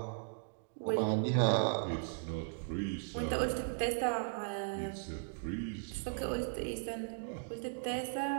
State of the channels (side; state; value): left; silent; digital silence